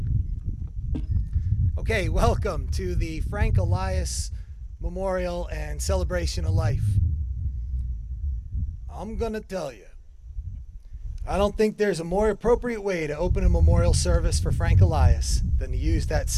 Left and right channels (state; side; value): identical; both; correlation 1.00